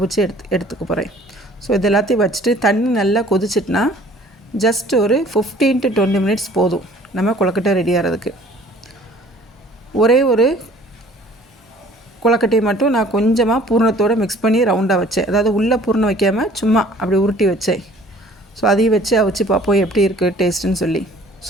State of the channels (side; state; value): both; normal; correlation 0.52